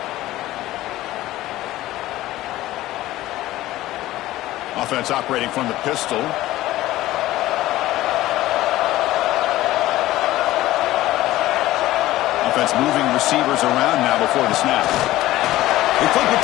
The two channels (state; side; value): quieter; right; 16.0 dB